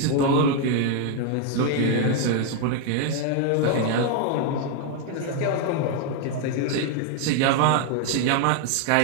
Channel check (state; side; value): different; both; correlation 0.00